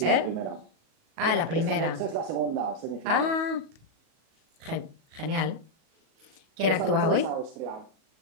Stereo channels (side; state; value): left; late; 37 ms